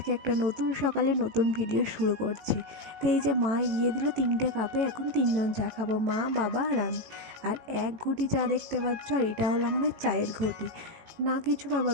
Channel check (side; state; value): left; late; 18 ms